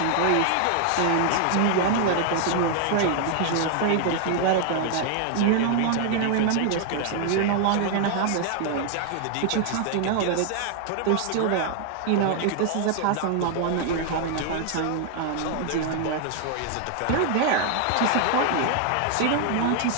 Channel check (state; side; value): different; both; correlation 0.00